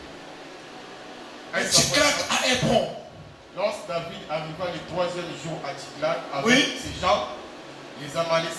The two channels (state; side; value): identical; both; correlation 1.00